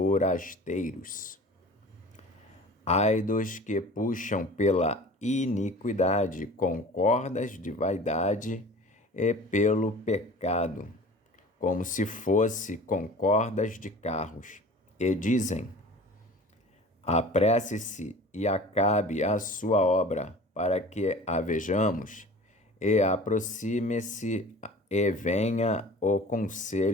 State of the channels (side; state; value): both; normal; correlation 0.42